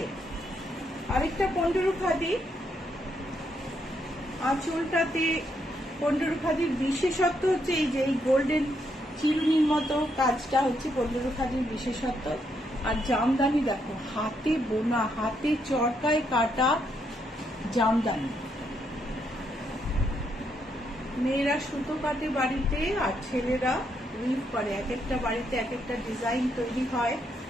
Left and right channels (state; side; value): normal; both; correlation 0.76